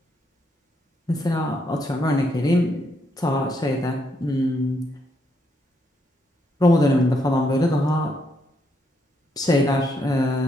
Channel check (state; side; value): normal; both; correlation 0.76